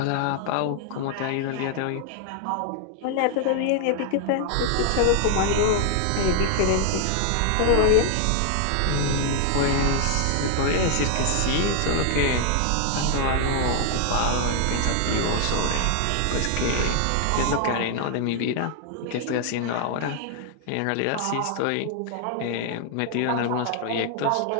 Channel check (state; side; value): different; both; correlation 0.00